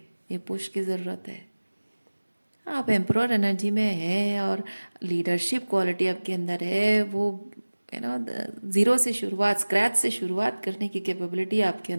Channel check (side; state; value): both; inverted; correlation -1.00